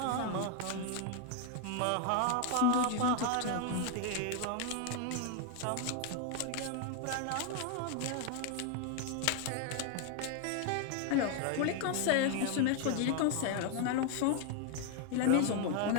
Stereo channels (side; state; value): both; different; correlation 0.01